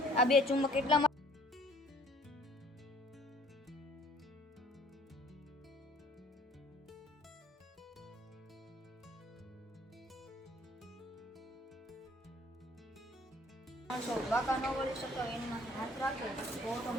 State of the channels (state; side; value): normal; both; correlation 0.56